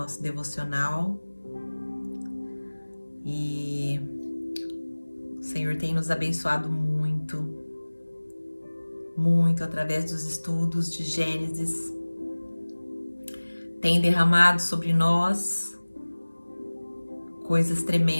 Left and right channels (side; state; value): both; inverted; correlation -1.00